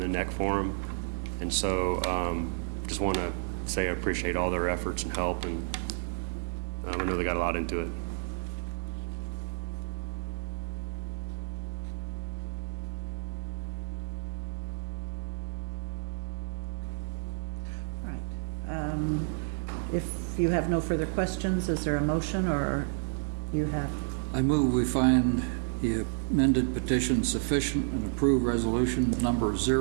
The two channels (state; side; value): silent; left; digital silence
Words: neck for them. And so, just want to say I appreciate all their efforts and help, and I know they got a lot into it. If you have no further questions, is there a motion, or you have? I move we find the amended petition sufficient and approve resolution number